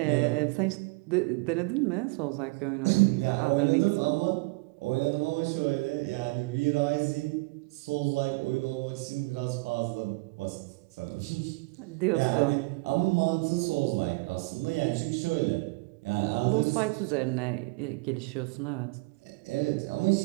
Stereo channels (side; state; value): left; quieter; 26.9 dB